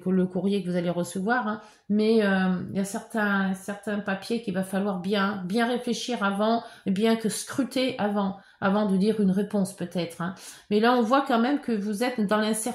courrier que vous allez recevoir, hein, mais il y a certains papiers qu'il va falloir bien réfléchir avant, bien que scruter avant de dire une réponse peut-être. Hein. Mais là, on voit quand même que vous êtes dans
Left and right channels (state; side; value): identical; both; correlation 1.00